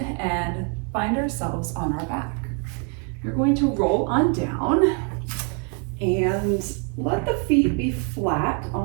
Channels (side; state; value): left; quieter; 38.8 dB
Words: and find ourselves on our back. You're going to roll on down and let the feet be flat